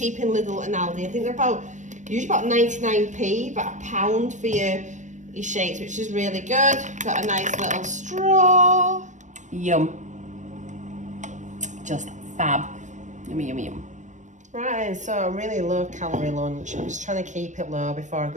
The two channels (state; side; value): late; left; 0.35 ms